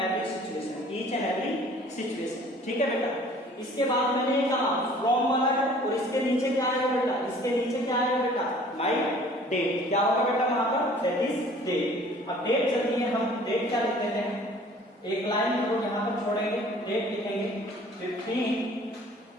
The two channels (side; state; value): both; normal; correlation 0.51